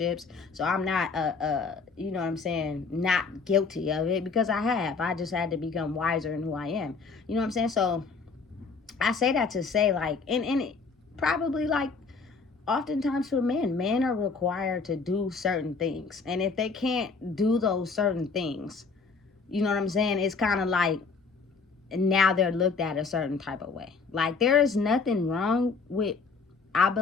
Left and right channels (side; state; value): right; quieter; 4.7 dB